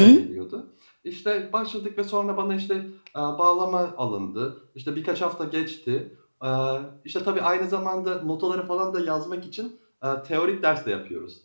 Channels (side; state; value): both; inverted; correlation -1.00